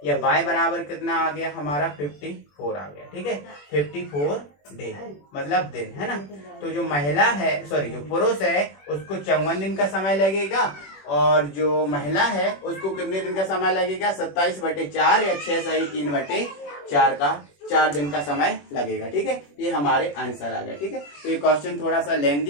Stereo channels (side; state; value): right; late; 21 ms